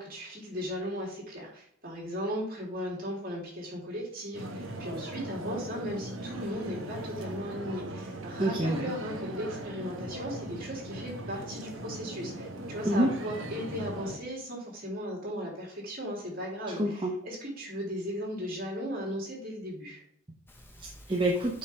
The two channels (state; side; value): normal; both; correlation 0.50